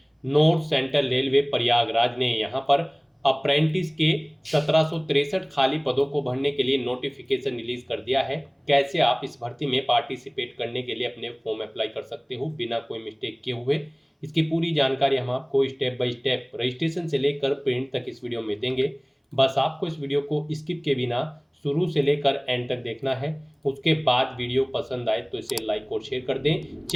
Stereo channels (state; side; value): identical; both; correlation 1.00